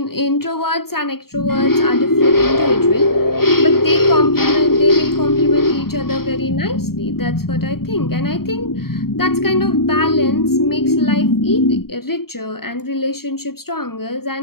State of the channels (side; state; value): right; late; 0.94 ms